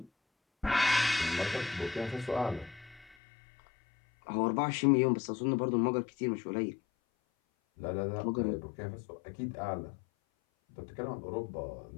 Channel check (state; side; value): drops out; right; at 3.2 s